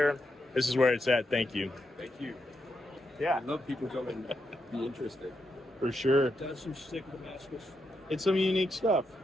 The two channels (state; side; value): normal; both; correlation 0.83